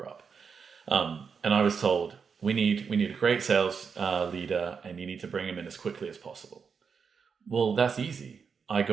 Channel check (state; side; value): quieter; left; 6.0 dB